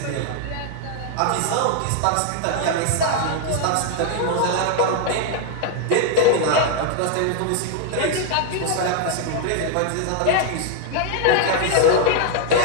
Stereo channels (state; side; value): different; both; correlation 0.00